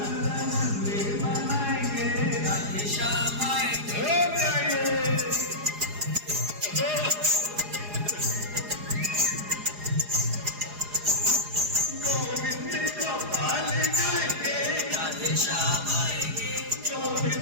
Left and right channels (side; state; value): left; late; 4.8 ms